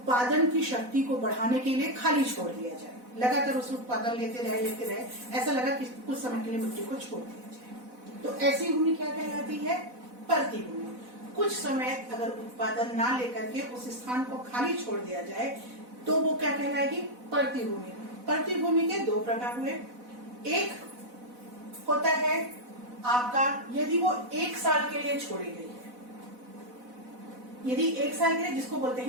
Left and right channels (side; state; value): left; late; 4.0 ms